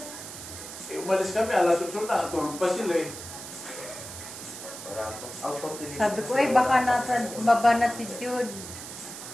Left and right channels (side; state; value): right; noise; hiss, 11 dB below the sound